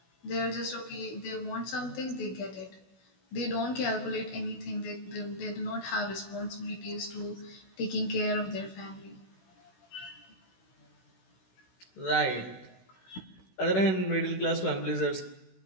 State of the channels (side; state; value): right; late; 16 ms